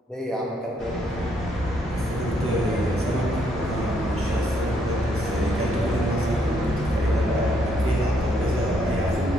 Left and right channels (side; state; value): both; normal; correlation 0.72